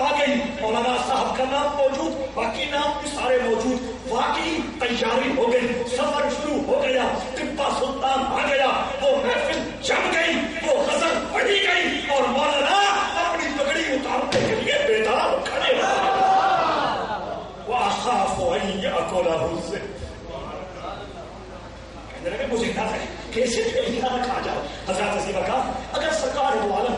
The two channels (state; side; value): identical; both; correlation 1.00